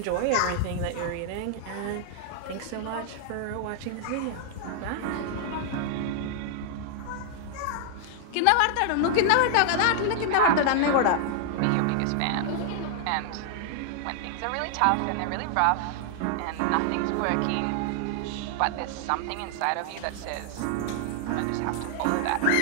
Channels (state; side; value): different; both; correlation 0.00